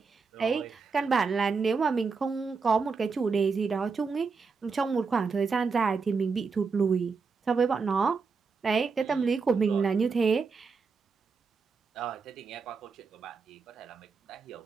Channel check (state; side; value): quieter; left; 5.0 dB